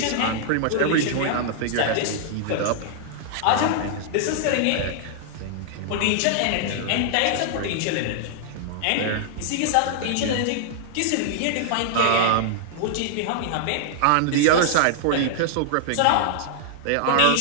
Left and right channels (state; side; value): different; both; correlation -0.01